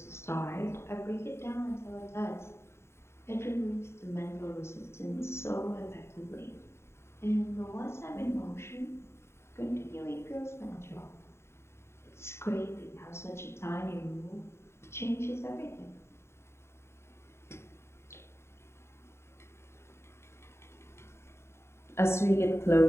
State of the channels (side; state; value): right; late; 0.13 ms